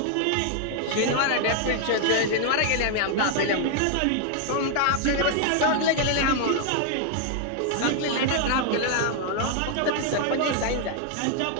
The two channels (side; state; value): both; different; correlation 0.00